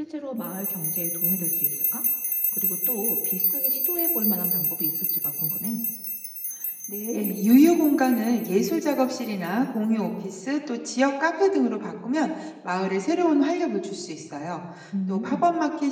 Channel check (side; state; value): both; identical; correlation 1.00